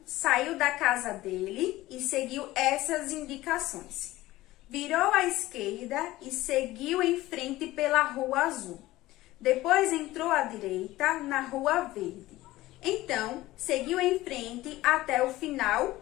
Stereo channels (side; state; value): right; quieter; 17.2 dB